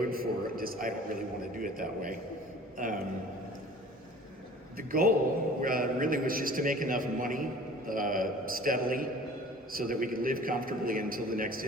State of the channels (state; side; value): normal; both; correlation 0.46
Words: for just, I don't really want to do it that way. The goal really was just to make enough money steadily so that we could live comfortably until the next